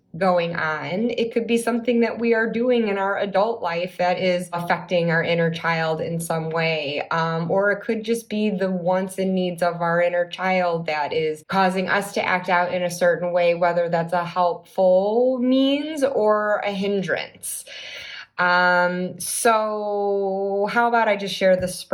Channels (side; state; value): both; identical; correlation 1.00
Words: going on. It could be something that we are doing in our adult life that is affecting our inner child in some way, or it could just be the wants and needs of our inner child that is causing us to act out in a certain way, whether that's a helpful means or a hindrance. So how about I just share the